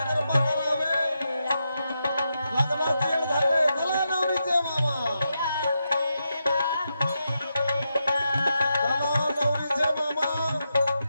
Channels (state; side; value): inverted; both; correlation -0.85